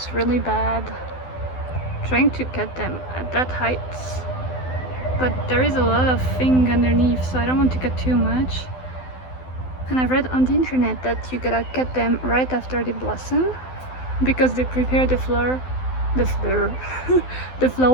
really bad. Trying to cut them at that height, but there is a lot of thing underneath, so I don't want to cut too much. And I've read on the internet that you gotta cut them right after they blossom because they prepare the flower the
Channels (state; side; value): late; right; 12 ms